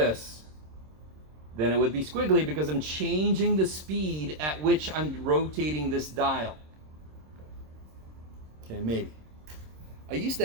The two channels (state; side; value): late; left; 26 ms